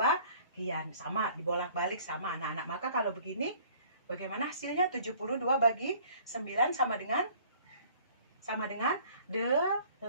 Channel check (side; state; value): both; inverted; correlation -0.54